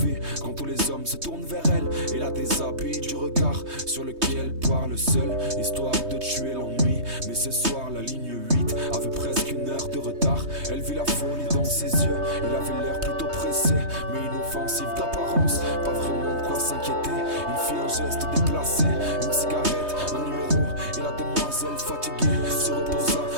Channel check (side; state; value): left; late; 3.2 ms